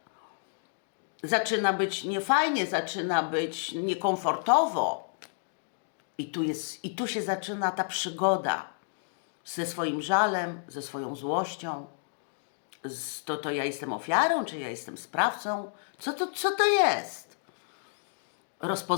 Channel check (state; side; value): silent; right; digital silence